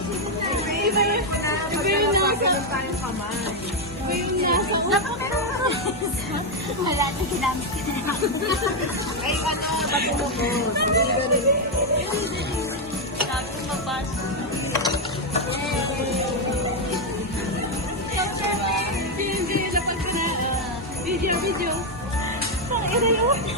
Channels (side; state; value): both; normal; correlation 0.03